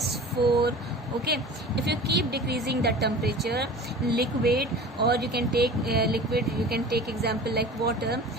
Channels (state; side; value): normal; both; correlation 0.39